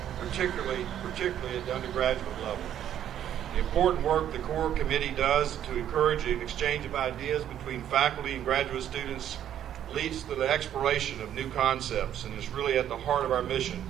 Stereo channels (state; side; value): quieter; left; 10.5 dB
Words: particularly at the undergraduate level. The important work the core committee does to encourage an exchange of ideas between faculty and graduate students leads to the exploration of new concepts and is really at the heart of our mission